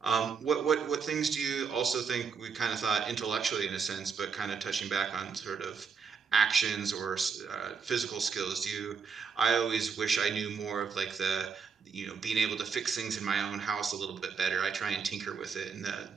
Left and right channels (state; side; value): quieter; left; 5.8 dB